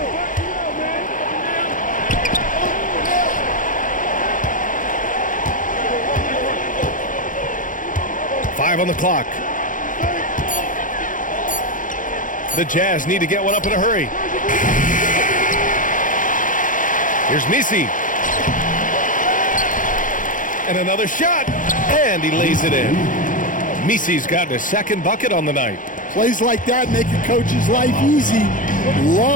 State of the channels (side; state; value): right; late; 0.38 ms